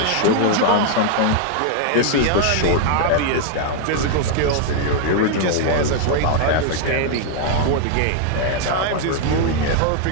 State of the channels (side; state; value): both; different; correlation 0.00